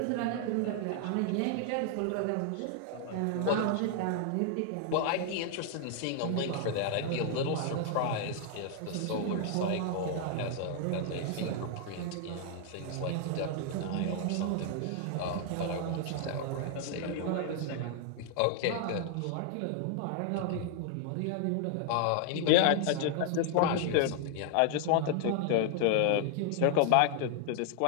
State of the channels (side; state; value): both; different; correlation 0.00